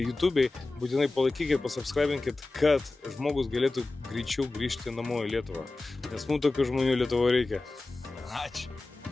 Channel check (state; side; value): quieter; right; 3.2 dB